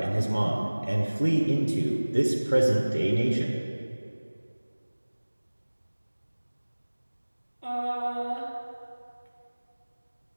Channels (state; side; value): inverted; both; correlation -1.00